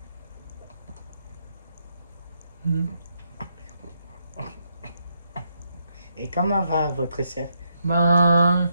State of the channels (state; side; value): inverted; both; correlation -0.78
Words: Et comment va votre sœur? Ben,